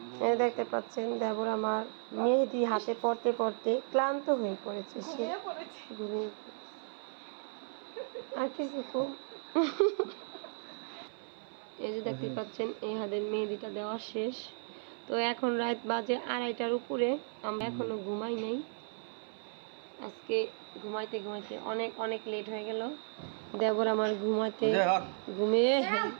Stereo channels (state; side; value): silent; left; 55 dB below the other